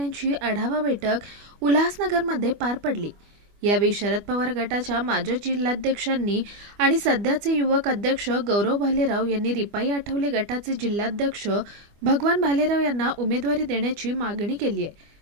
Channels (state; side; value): late; left; 25 ms